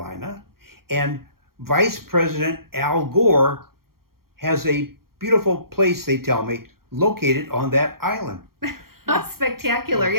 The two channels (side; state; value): left; late; 0.93 ms